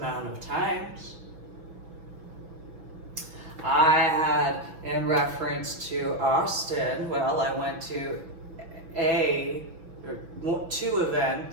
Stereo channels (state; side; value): late; left; 5.9 ms